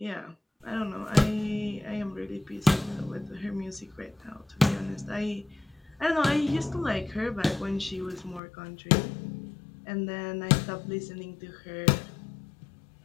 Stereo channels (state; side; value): drops out; right; at 8.4 s